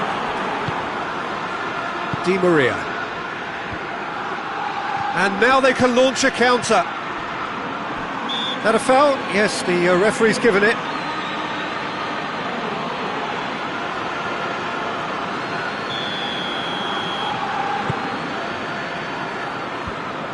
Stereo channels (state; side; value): identical; both; correlation 1.00